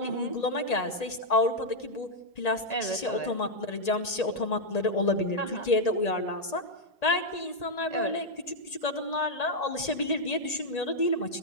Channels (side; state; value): right; late; 1.8 ms